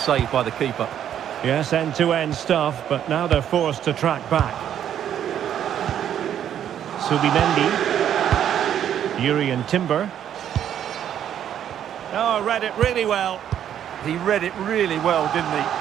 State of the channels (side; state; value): left; quieter; 9.9 dB